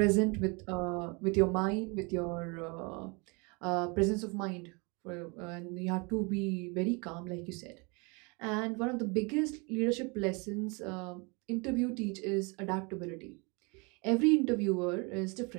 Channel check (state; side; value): quieter; left; 30.1 dB